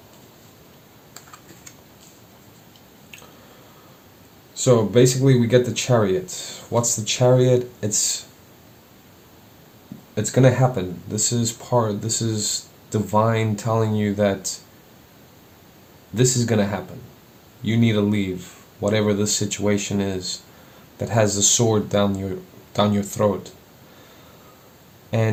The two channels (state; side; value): identical; both; correlation 1.00